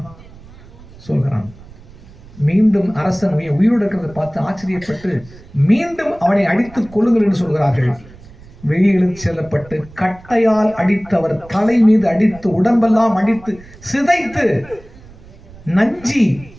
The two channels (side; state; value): right; noise; rumble, 21 dB below the sound